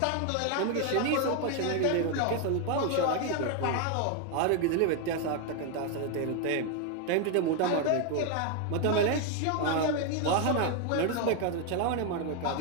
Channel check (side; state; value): both; different; correlation 0.01